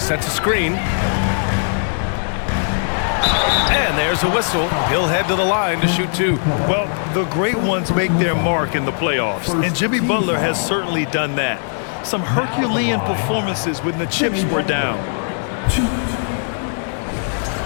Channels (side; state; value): right; silent; digital silence